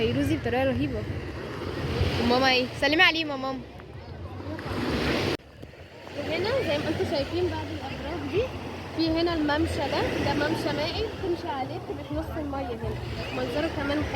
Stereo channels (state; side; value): identical; both; correlation 1.00